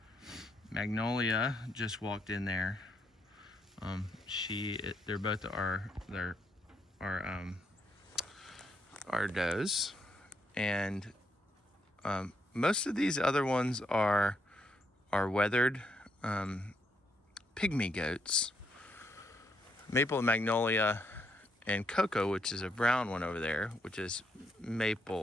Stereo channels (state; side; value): normal; both; correlation 0.76